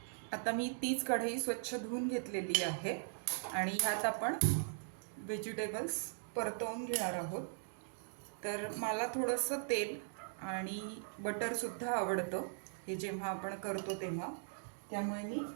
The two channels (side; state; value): left; silent; digital silence